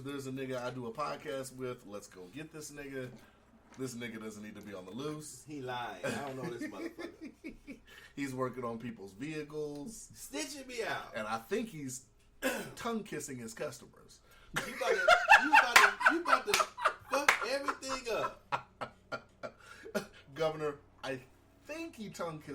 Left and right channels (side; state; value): both; identical; correlation 1.00